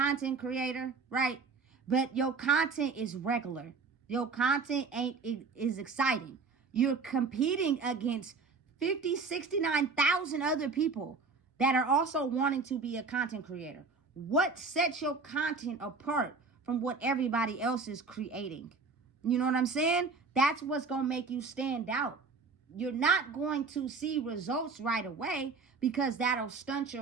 creator, right? But your content is regular. Your content is exciting. You're competing against 69,000 other people that are also wanting to be a content creator. What sets your content apart from what everybody else is creating? You know what I'm saying? That's what's going to make you stand out. You're not going to see results right away because that'll stunt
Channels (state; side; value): quieter; left; 4.5 dB